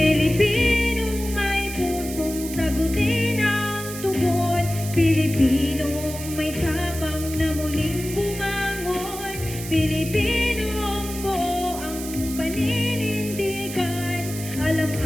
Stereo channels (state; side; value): noise; right; hiss, 10 dB below the sound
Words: may pusong sagutin ang tugon, Pilipinong may tapang na muling bumangon, Pilipinong buo ang paninindigan, alam